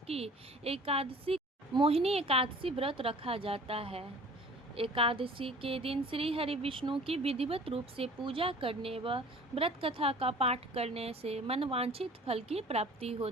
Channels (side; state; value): both; normal; correlation 0.47